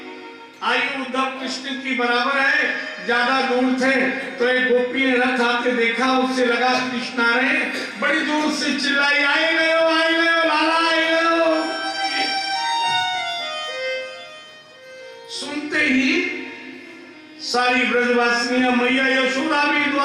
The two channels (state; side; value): identical; both; correlation 1.00